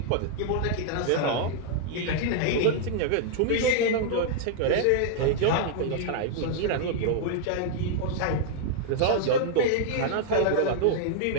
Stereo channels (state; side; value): different; both; correlation 0.00